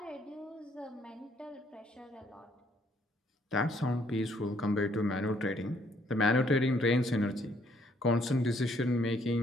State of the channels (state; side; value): normal; both; correlation 0.67